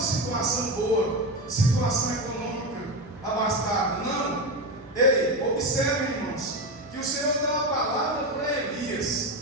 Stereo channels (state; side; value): normal; both; correlation 0.17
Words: situação boa, situação econômica abastada. Não. Ei, observe, irmãos, que o Senhor deu uma palavra para